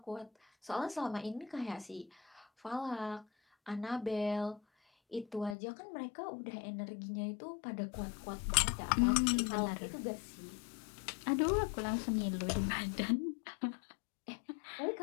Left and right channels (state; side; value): drops out; right; at 5.6 s